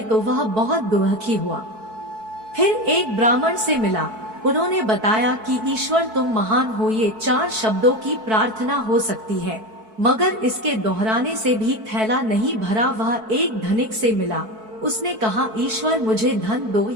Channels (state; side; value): late; left; 4.6 ms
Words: तो वह बहुत दुखी हुआ। फिर एक ब्राह्मण से मिला। उन्होंने बताया कि ईश्वर तुम महान हो, ये 4 शब्दों की प्रार्थना हो सकती है, मगर इसके दोहराने से भी थैला नहीं भरा। वह एक धनिक से मिला। उसने कहा, ईश्वर मुझे धन दो।